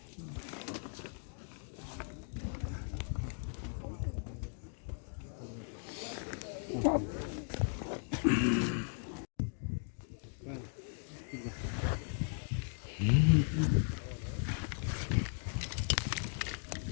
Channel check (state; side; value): silent; right; 53 dB below the other